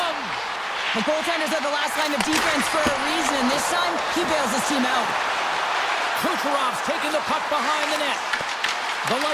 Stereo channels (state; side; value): identical; both; correlation 1.00